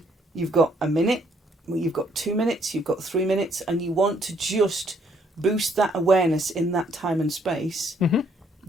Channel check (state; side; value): normal; both; correlation 0.67